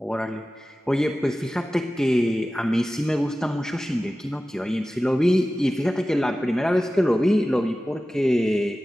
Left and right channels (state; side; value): normal; both; correlation 0.95